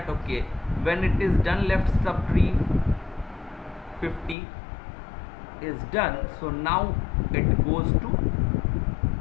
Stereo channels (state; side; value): drops out; right; at 4.4 s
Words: okay, when it is done, left subtree 50 is done. So now it goes to,